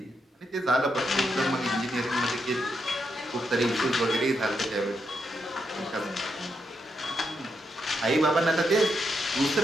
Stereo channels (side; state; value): both; normal; correlation 0.81